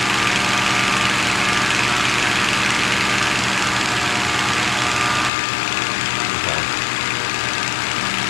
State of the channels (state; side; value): drops out; right; at 5.3 s